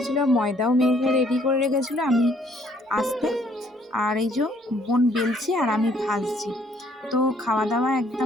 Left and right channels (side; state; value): both; normal; correlation 0.64